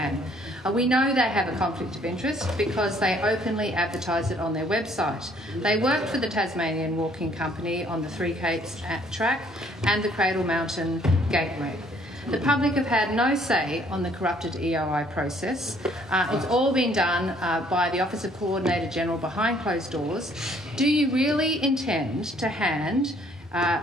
We know they have a conflict of interest because they openly advertise it on their website. They work for the Tasmanian Walking Company on the Three Capes track and the Cradle Mountain Gateway. The public have had no say on the corrupted EOI process. It's all been done by the Office of Coordinator General behind closed doors. Do you really intend to hand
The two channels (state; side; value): normal; both; correlation 0.62